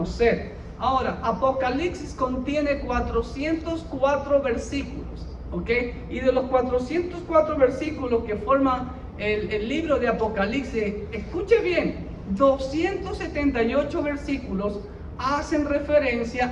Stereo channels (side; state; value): both; identical; correlation 1.00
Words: Ahora, Apocalipsis contiene 404 versículos, ¿ok? Y de los 404 versículos que forman el libro de Apocalipsis, escuche bien, 278 versículos hacen